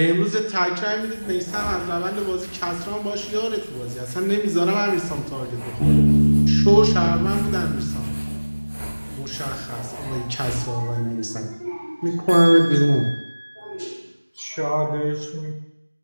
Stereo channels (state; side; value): inverted; both; correlation -1.00